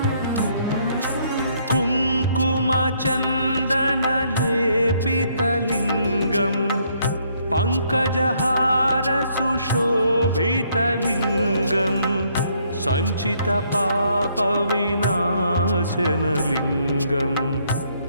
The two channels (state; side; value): inverted; both; correlation -0.69